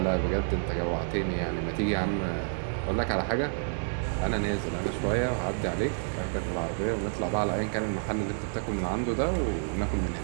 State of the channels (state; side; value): silent; left; digital silence